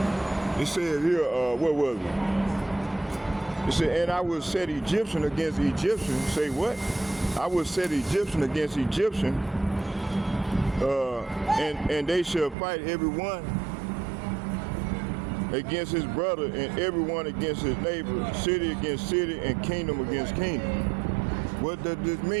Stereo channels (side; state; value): left; drops out; at 12.6 s